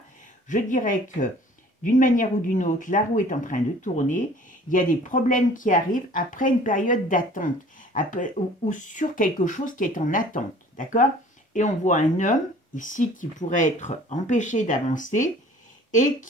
je dirais que d'une manière ou d'une autre, la roue est en train de tourner. Il y a des problèmes qui arrivent après une période d'attente ou sur quelque chose qui est en attente. D'accord? Et on voit un homme ici qui pourrait être empêché d'avancer et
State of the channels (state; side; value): normal; both; correlation 0.50